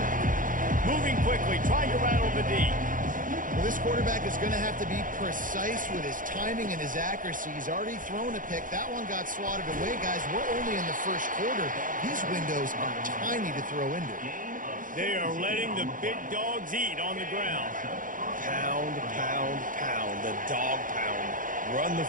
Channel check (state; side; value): late; left; 0.39 ms